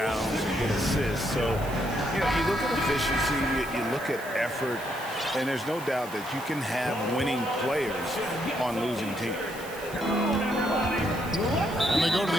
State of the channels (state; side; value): noise; right; hiss, 17 dB below the sound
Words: and get assists. So, you know, you look at efficiency, you look at effort, and there's no doubt that you can have winning players on losing teams. And they go to